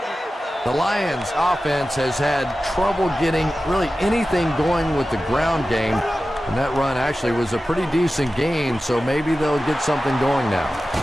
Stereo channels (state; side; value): normal; both; correlation 0.94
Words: The Lions offense has had trouble getting really anything going with the ground game, and that run actually was a pretty decent gain, so maybe they'll get something going now.